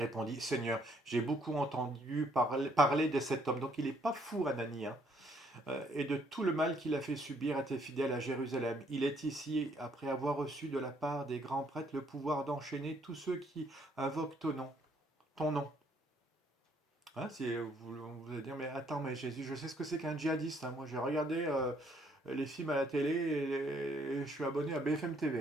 Seigneur, j'ai beaucoup entendu parler de cet homme. Donc il n'est pas fou, Anani, hein, et de tout le mal qu'il a fait subir à tes fidèles à Jérusalem. Il est ici après avoir reçu de la part des grands prêtres le pouvoir d'enchaîner tous ceux qui invoquent ton nom. Ton nom. Hein, vous allez dire, mais attends, mais Jésus, je sais ce que c'est qu'un djihadiste, hein. Moi, j'ai regardé les films à la télé et je suis abonné à BFM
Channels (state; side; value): normal; both; correlation 0.67